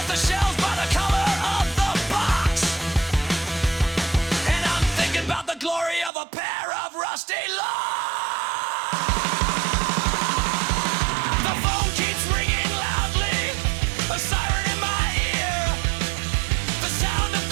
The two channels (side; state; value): left; drops out; at 6.1 s